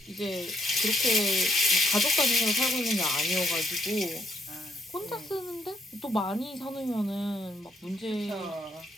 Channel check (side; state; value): both; normal; correlation 0.73